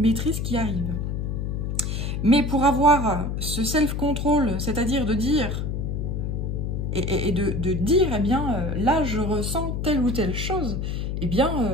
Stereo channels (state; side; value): noise; left; hum, 2 dB below the sound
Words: qui arrive. Mais pour avoir ce self-control, c'est-à-dire de dire, et de dire, eh bien, là, je ressens telle ou telle chose, eh bien,